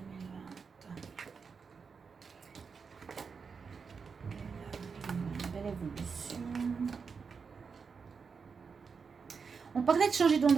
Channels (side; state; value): left; quieter; 5.5 dB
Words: On parlait de changer